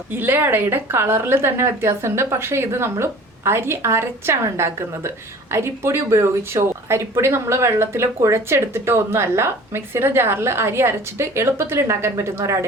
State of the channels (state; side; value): normal; both; correlation 0.45